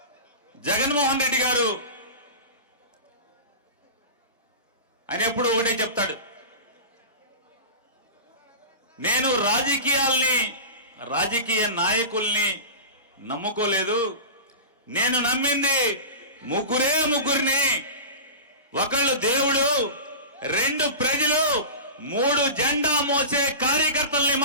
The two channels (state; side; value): inverted; both; correlation -0.30